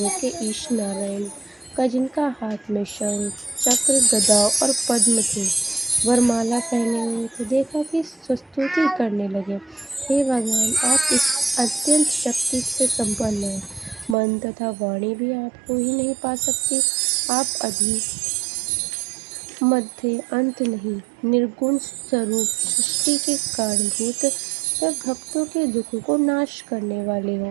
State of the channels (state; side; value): drops out; left; at 14.2 s